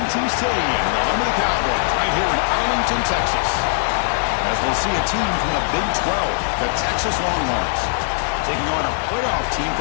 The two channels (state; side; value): silent; right; 66 dB below the other